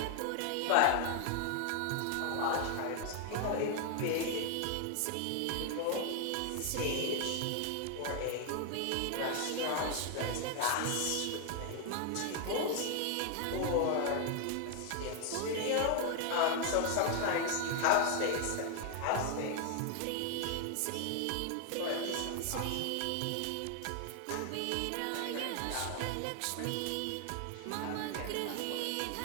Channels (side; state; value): both; different; correlation 0.00